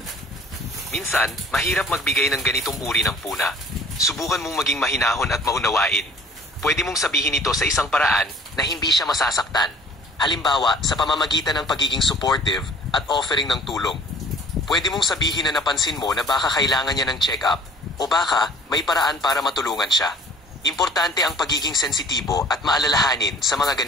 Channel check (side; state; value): both; normal; correlation 0.52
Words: Minsan, mahirap magbigay ng ganitong uri ng puna. Subukan mong maging mahinahon at maunawain. Pwede mong sabihin ito sa isang paraan na hindi siya masasaktan. Halimbawa, sa pamamagitan ng pagiging supportive at offering ng tulong. Pwede mong sabihin na napansin mo na baka kailangan niya ng check-up o baka may paraan para matulungan siya. Importante ang pagiging sensitibo at maalalahanin sa mga